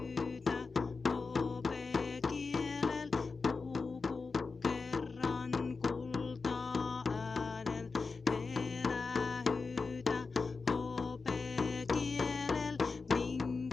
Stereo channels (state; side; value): quieter; right; 4.4 dB